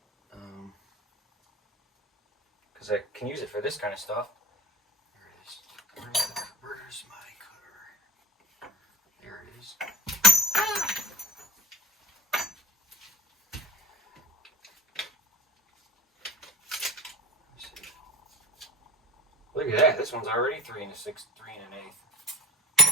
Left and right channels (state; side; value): normal; both; correlation 0.35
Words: because I can use it for this kind of stuff. There it is. Where's my cutter? There it is. Look at that. This one's already 3 1/6, 3 1/8.